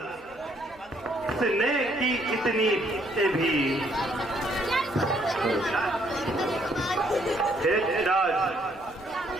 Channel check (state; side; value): noise; right; hum, 29 dB below the sound